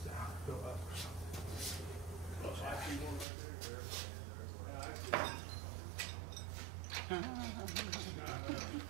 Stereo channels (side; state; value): left; drops out; at 3.2 s